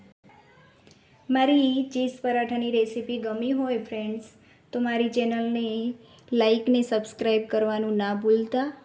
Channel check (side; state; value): both; identical; correlation 1.00